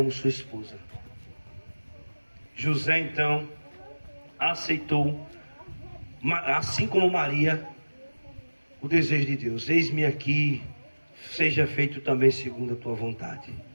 sua esposa. José então aceitou, assim como Maria, o desejo de Deus. Eis-me aqui, seja feito também segundo a tua vontade.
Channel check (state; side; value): inverted; both; correlation -1.00